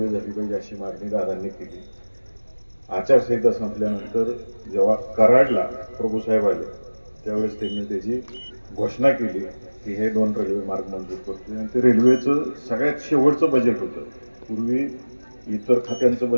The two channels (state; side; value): inverted; both; correlation -1.00